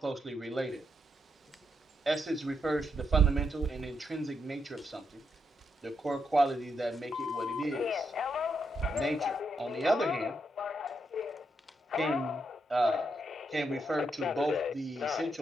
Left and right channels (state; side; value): normal; both; correlation 0.80